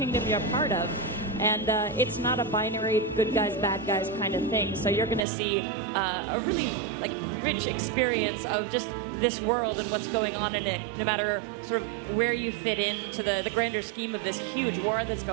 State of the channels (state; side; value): drops out; left; at 5.2 s